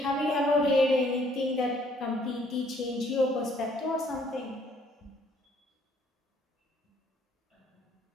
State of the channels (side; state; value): both; normal; correlation 0.64